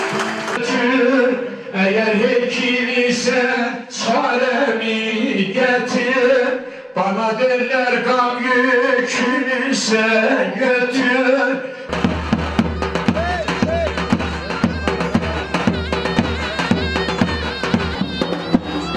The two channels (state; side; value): identical; both; correlation 1.00